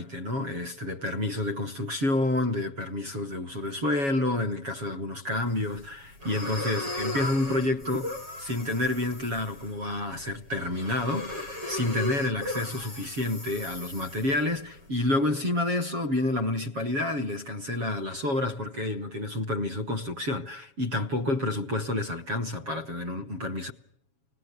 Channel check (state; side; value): late; left; 7.3 ms